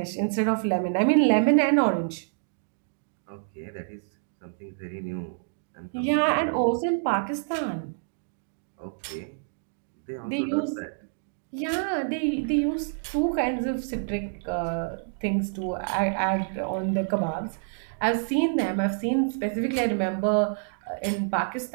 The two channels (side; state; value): left; silent; digital silence